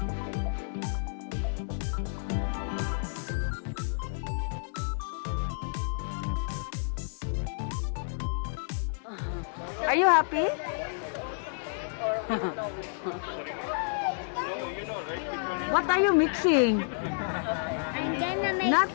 Are you happy? What are you mixing? I'm gonna make.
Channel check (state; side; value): silent; right; digital silence